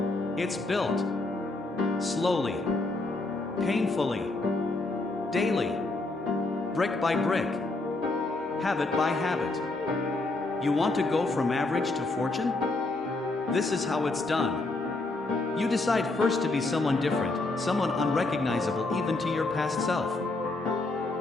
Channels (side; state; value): right; quieter; 3.1 dB